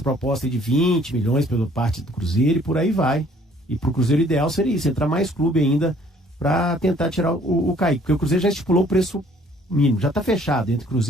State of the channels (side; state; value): both; normal; correlation 0.59